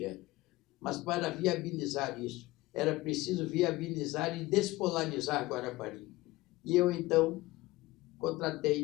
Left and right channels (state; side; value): quieter; right; 19.5 dB